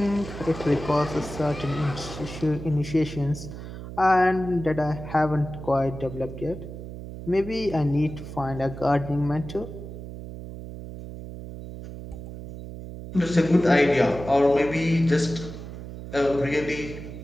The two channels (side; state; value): right; noise; hum, 11 dB below the sound